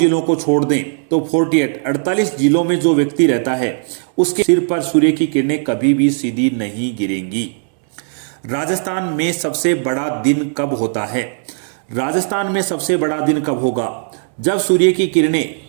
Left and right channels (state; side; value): silent; left; 68 dB below the other